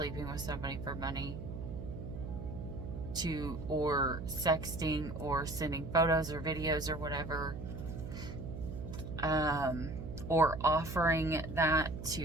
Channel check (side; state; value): right; noise; hum, 8 dB below the sound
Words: with somebody for money, or sexting or sending photos or videos or whatever, or offering that